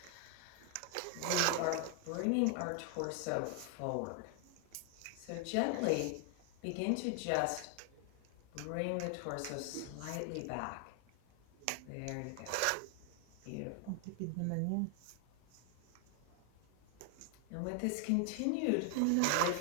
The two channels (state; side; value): different; both; correlation 0.00